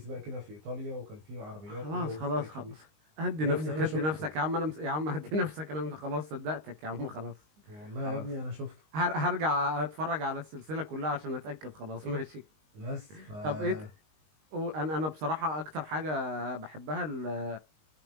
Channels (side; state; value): left; late; 19 ms